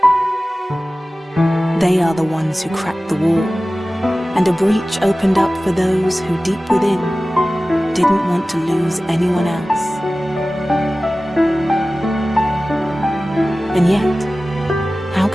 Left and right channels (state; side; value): normal; both; correlation 0.96